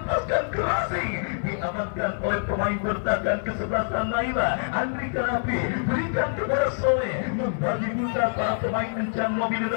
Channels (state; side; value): silent; right; digital silence